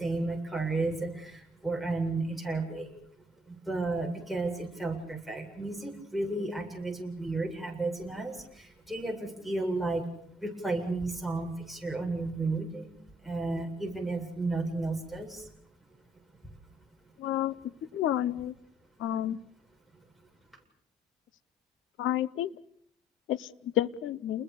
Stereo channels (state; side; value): normal; both; correlation 0.64